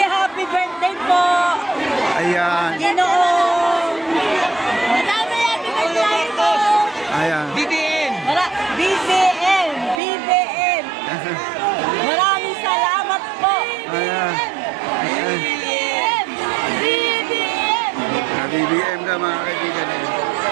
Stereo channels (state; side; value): drops out; left; at 10.0 s